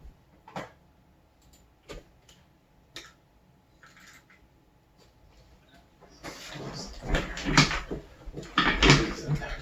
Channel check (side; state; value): both; identical; correlation 1.00